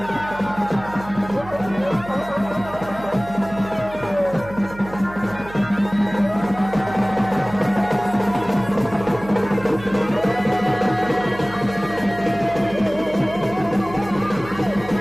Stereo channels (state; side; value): noise; right; hum, 15 dB below the sound